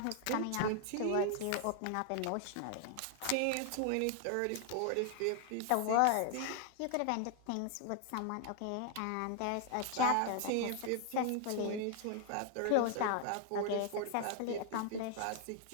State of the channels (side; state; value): both; different; correlation 0.00